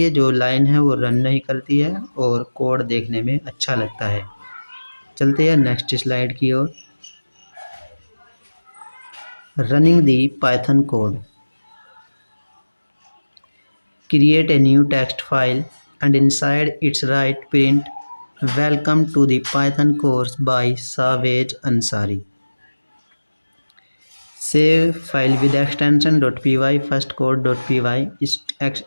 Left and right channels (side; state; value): both; inverted; correlation -1.00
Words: जो लाइन है वो रन नहीं करती है और कोड देखने में अच्छा लगता है। चलते हैं नेक्स्ट स्लाइड की ओर। Running the Python code. Create a new text file and inside its write print welcome to the Python course by Savage Ansari। Save file with extension .py firstcode.py,